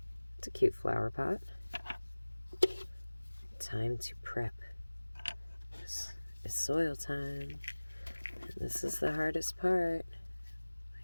It's a cute flower pot. Time to prep. It's soil time. And this is the hardest part.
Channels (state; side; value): inverted; both; correlation -1.00